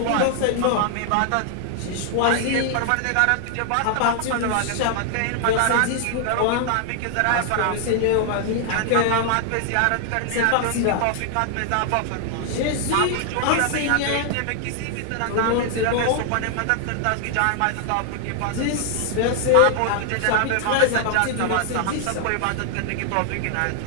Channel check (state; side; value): different; both; correlation 0.00